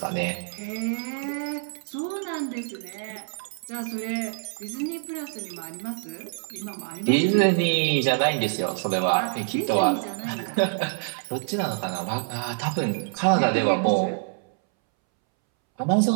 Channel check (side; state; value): left; silent; 61 dB below the other